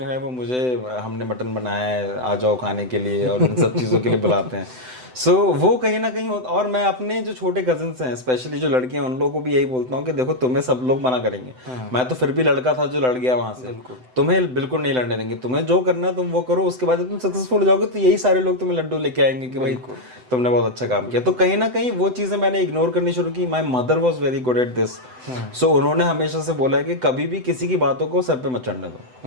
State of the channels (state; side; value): late; left; 7.9 ms